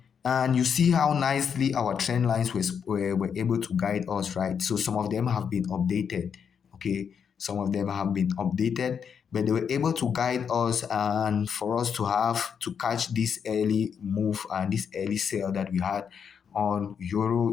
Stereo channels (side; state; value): right; quieter; 7.1 dB